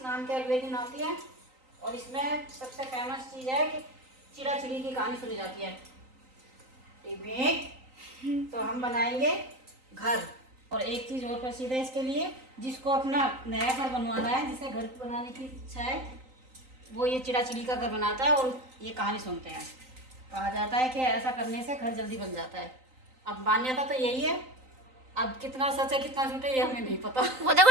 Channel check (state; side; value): late; left; 3.9 ms